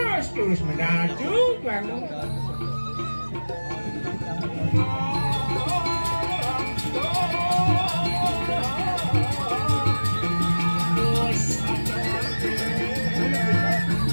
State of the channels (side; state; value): both; inverted; correlation -1.00